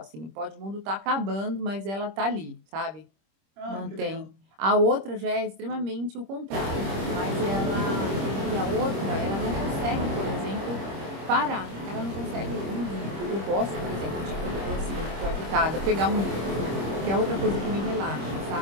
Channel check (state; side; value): late; left; 25 ms